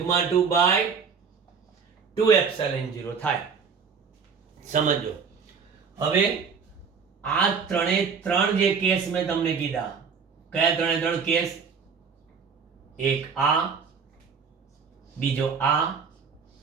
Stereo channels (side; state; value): left; quieter; 5.9 dB